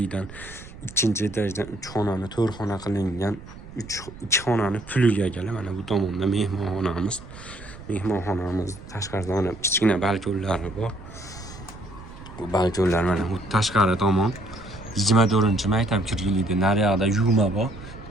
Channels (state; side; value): noise; right; rumble, 16 dB below the sound